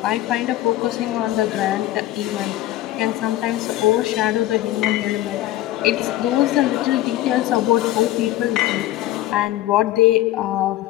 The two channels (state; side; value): quieter; right; 14.8 dB